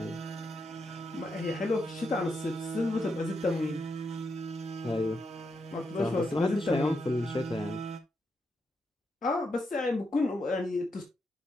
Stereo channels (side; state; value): both; normal; correlation 0.82